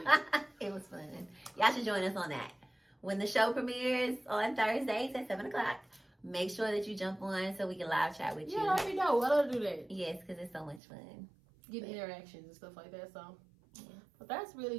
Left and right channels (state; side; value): drops out; left; at 10.8 s